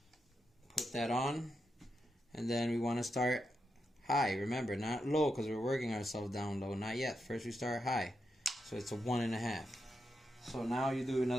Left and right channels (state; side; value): normal; both; correlation 0.85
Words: Put that on, and then we want to start high. Remember, not low, because we're working ourselves down low. Not yet. First we start high, so it's a 1.5. So now you do